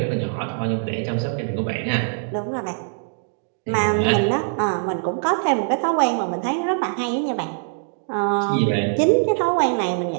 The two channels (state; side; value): silent; left; digital silence